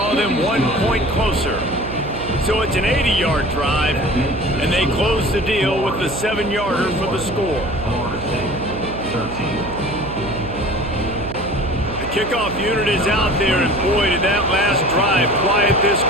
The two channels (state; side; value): noise; right; hum, 9 dB below the sound